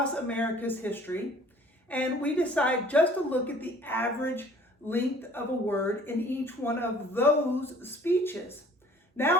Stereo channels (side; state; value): both; normal; correlation 0.52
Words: America's history, and we decide just to look at the average length of a word in each one of those speeches.